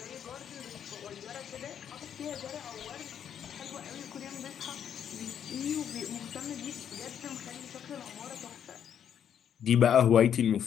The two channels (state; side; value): quieter; right; 8.9 dB